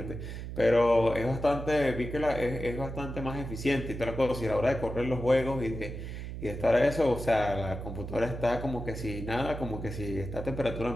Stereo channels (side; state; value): right; noise; hum, 8 dB below the sound